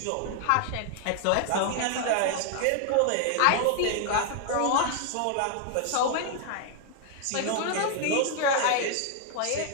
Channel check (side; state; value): both; different; correlation 0.00